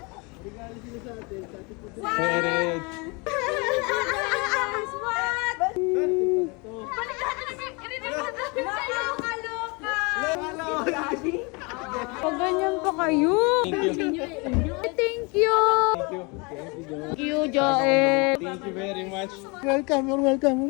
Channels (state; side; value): quieter; right; 29.4 dB